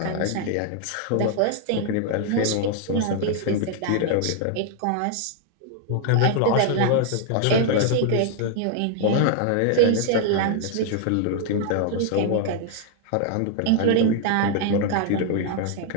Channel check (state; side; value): different; both; correlation 0.00